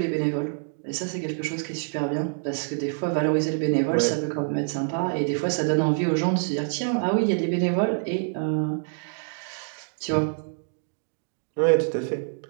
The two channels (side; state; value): left; silent; digital silence